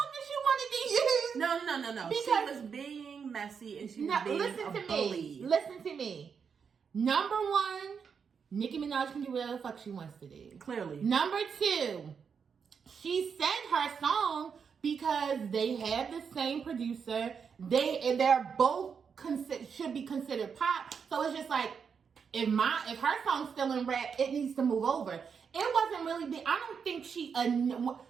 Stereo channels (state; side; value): quieter; left; 6.4 dB